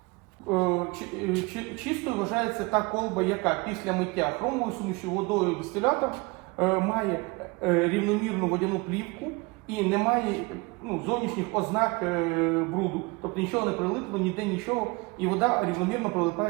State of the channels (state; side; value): quieter; left; 26.3 dB